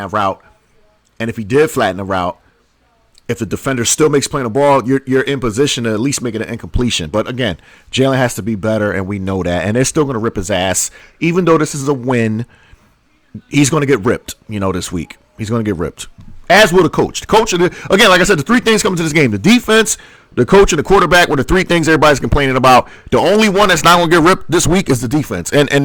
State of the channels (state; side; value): identical; both; correlation 1.00